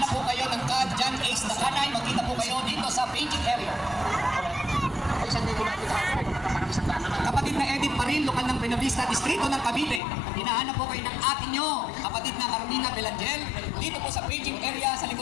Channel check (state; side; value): drops out; right; at 10.0 s